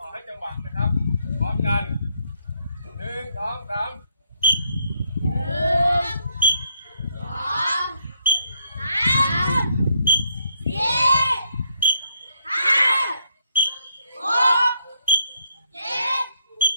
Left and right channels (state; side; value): inverted; both; correlation -0.73